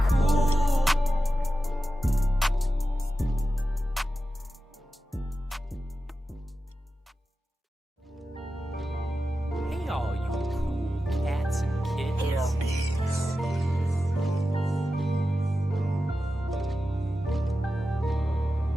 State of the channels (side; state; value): both; normal; correlation 0.92